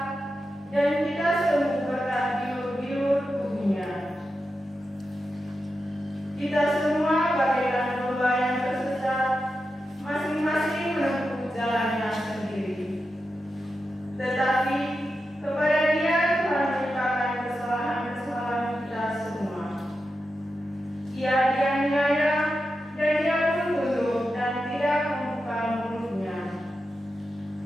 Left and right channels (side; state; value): both; normal; correlation 0.89